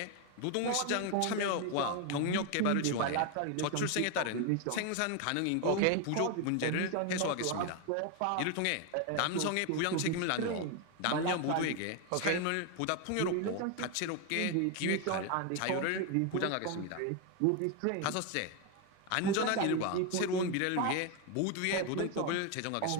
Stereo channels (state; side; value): different; both; correlation 0.01